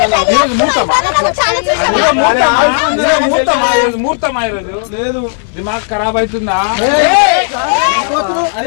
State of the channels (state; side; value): silent; right; digital silence